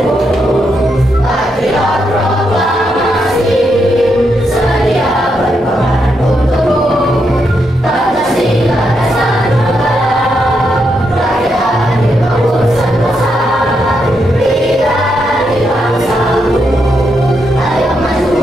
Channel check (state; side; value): normal; both; correlation 0.81